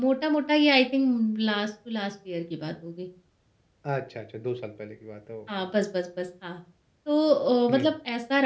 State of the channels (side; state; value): both; identical; correlation 1.00